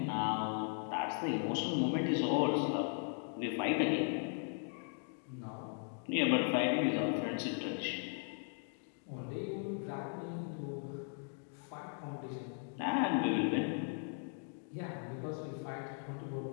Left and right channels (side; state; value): right; silent; 52 dB below the other